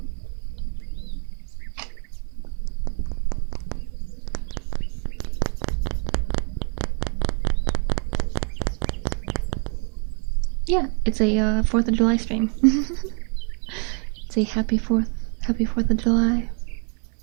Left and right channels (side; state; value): left; quieter; 38.7 dB